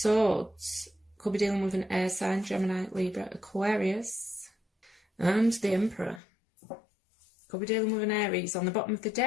could be dealing with an air sign, Gemini, Libra, Aquarius. And the Emperor could be dealing with an Aries. On the bottom of the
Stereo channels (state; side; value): drops out; right; at 6.2 s